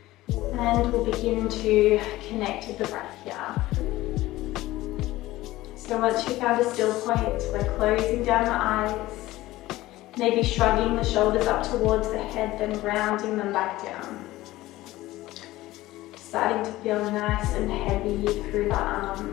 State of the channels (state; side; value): quieter; right; 17.2 dB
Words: And we'll begin to connect with the breath here. So once you've found a still point, we're closing down the eyes, maybe shrugging the shoulders up towards the head, then rounding them back down. Starting to feel nice and heavy through the